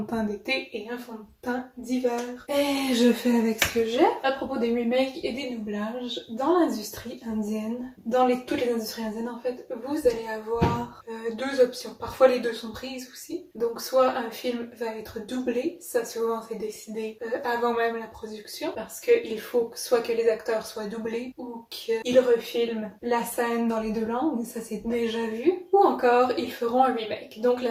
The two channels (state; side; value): identical; both; correlation 1.00